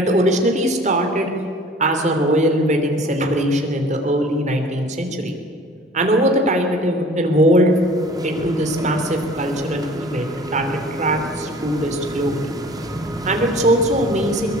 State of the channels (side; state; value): both; normal; correlation 0.47